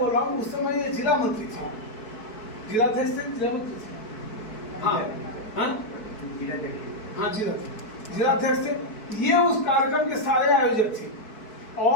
रहा हूँ, उस समय ये जिला मंत्री थे, जिलाध्यक्ष थे, जिला मंत्री थे, हाँ हाँ जिलाध्यक्ष थे। ये उस कार्यक्रम के सारे आयोजक थे,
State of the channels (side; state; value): right; late; 4.6 ms